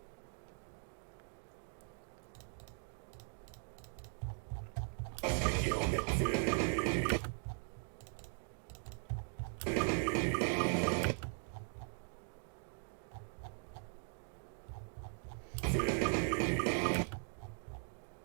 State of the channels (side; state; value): left; silent; 51 dB below the other